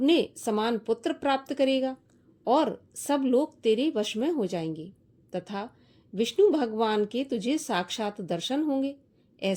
समान पुत्र प्राप्त करेगा और सब लोग तेरे वश में हो जाएंगे तथा विष्णु भगवान के तुझे साक्षात दर्शन होंगे,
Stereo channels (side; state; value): both; identical; correlation 1.00